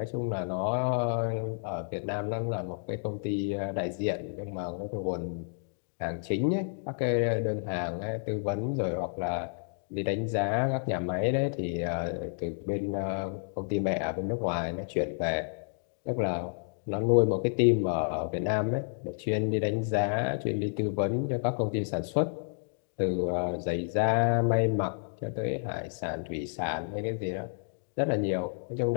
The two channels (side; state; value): right; silent; digital silence